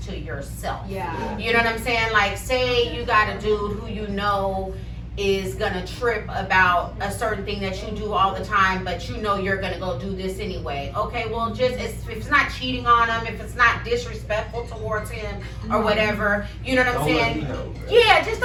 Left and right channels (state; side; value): identical; both; correlation 1.00